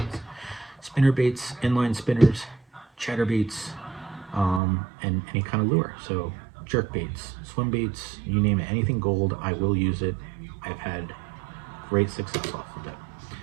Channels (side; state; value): left; drops out; at 4.6 s